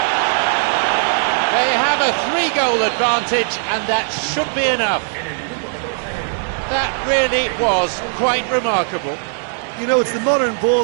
They have a 3-goal advantage, and that should be enough. That really was quite remarkable. You know, it's the modern ball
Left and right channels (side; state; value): left; silent; digital silence